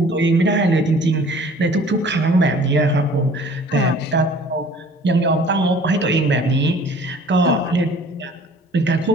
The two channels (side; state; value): both; normal; correlation 0.50